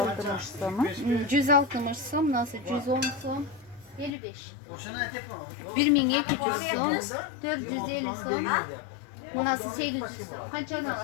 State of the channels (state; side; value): drops out; right; at 4.1 s